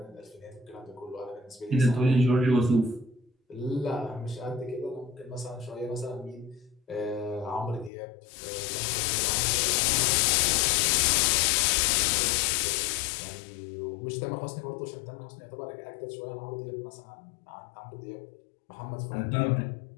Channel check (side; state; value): right; drops out; at 7.9 s